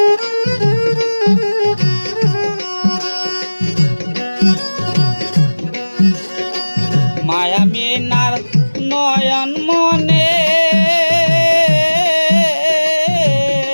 মায়া মিনার নয়ন মনে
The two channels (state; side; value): inverted; both; correlation -1.00